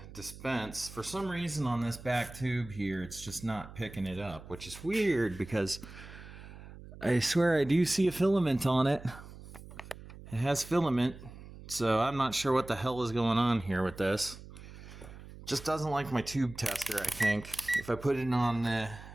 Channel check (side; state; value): right; noise; hum, 16 dB below the sound